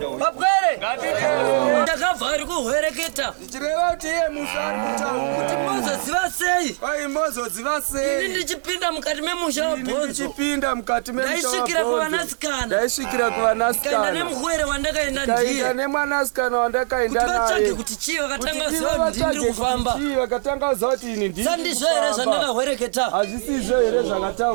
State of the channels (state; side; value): silent; left; 58 dB below the other